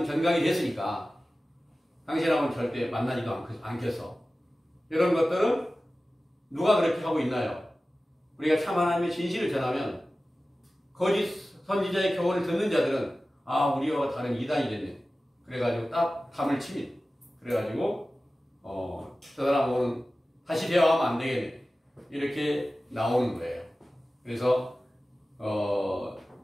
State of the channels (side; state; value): both; normal; correlation 0.96